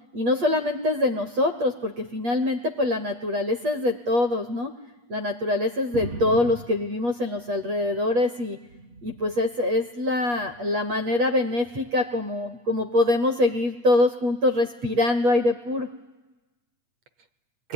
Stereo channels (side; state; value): left; late; 8.4 ms